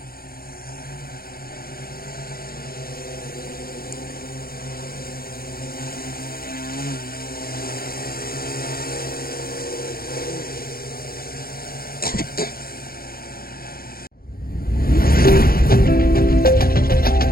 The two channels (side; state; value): right; late; 0.43 ms